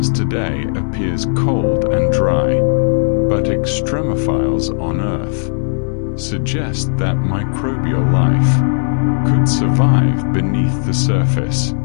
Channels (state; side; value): silent; right; digital silence